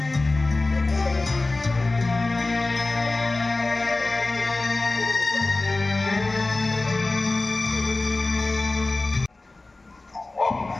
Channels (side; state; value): right; quieter; 3.2 dB